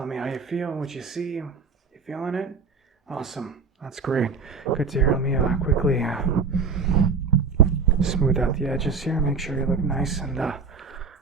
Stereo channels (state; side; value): quieter; left; 5.1 dB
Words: you feel, what you see. You feeling it? Awesome. That's great. Good to hear. Let me quickly smooth out the edges here. Make sure you look nice